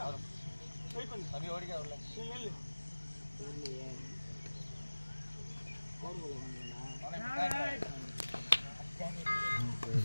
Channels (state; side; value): inverted; both; correlation -1.00